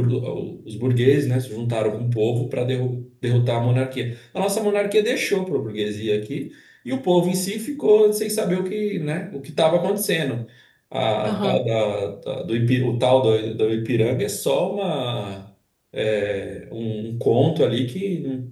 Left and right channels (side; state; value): both; identical; correlation 1.00